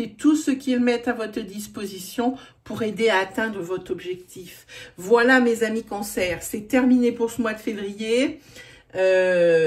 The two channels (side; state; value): both; identical; correlation 1.00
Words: tout ce qu'ils mettent à votre disposition pour aider à atteindre votre objectif. Voilà mes amis Cancer, c'est terminé pour ce mois de février.